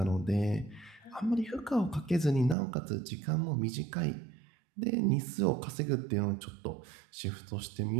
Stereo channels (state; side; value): drops out; left; at 2.6 s